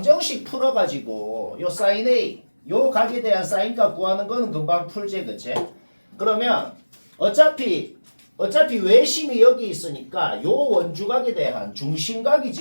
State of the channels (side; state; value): both; inverted; correlation -1.00